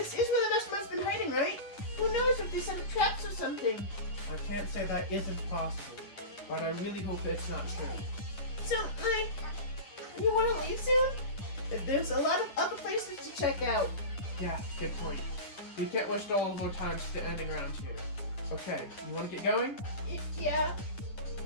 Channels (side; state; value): right; late; 9.9 ms